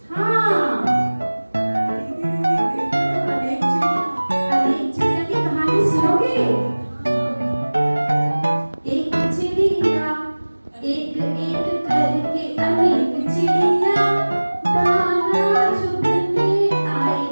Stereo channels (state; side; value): inverted; both; correlation -1.00